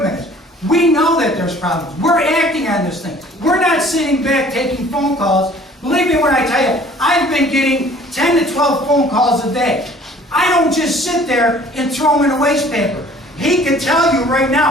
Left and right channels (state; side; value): normal; both; correlation 0.52